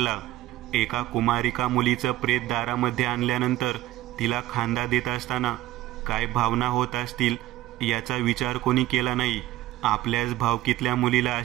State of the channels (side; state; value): left; quieter; 15.6 dB